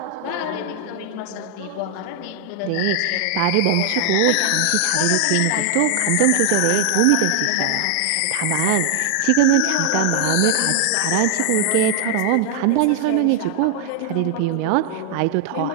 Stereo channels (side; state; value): both; different; correlation 0.00